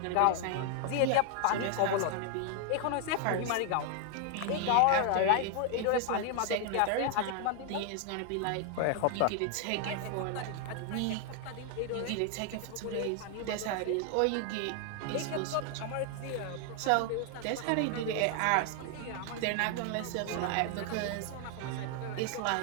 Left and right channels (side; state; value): both; different; correlation 0.00